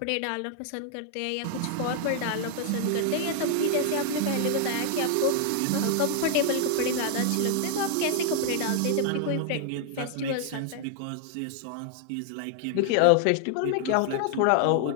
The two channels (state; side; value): different; both; correlation 0.00